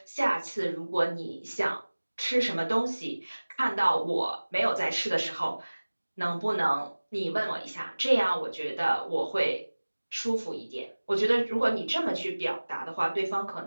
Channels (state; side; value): inverted; both; correlation -1.00